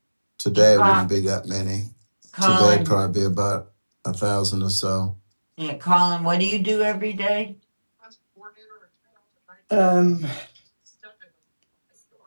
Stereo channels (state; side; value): inverted; both; correlation -1.00